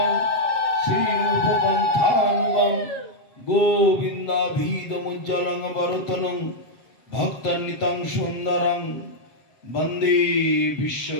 श्री रूप पंथानुगम गोविंदाभिधमुज्ज्वलं वरतनं भक्तनितं सुंदरं वंदे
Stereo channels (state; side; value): late; right; 7.8 ms